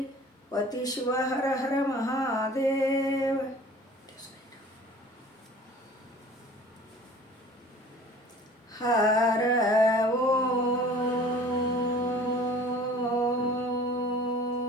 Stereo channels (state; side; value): normal; both; correlation 0.46